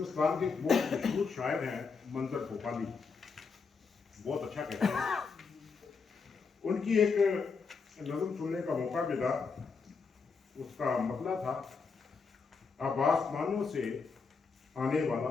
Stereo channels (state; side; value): quieter; right; 5.0 dB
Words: کے ایک بہت مشہور شاعر ہیں منظر بھوپالی، بہت اچھا کہتے ہیں. ان کی ایک نظم سننے کا موقع ملا، اس کا مطلب تھا اب آسمانوں سے آنے والا